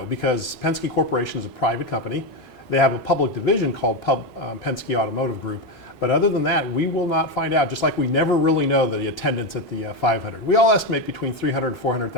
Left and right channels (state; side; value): normal; both; correlation 0.11